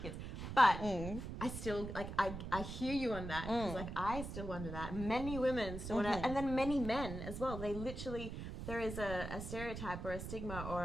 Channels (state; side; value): noise; right; rumble, 7 dB below the sound